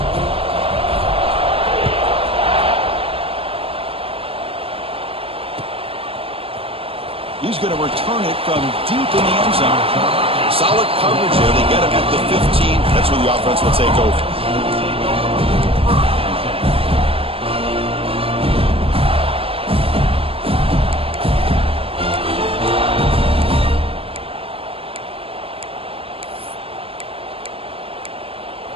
He's going to return it from deep in the end zone. Solid coverage there. They get him at the 15. That's where the offense will take over.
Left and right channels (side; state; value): left; late; 0.27 ms